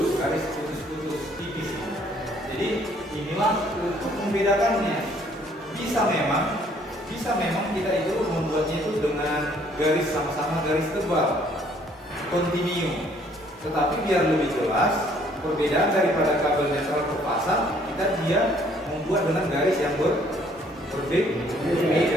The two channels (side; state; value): both; normal; correlation 0.62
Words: garis putus tipis. Jadi inilah untuk membedakannya. Bisa memang kita itu membuatnya itu dengan garis sama-sama garis tebal kontinu, tetapi biar lebih jelas perbedaan daripada kabel netral ke fasa, dia membuat dengan garis yang